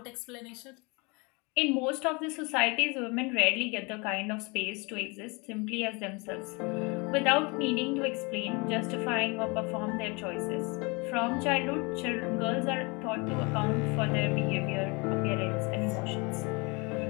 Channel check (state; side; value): quieter; right; 28.7 dB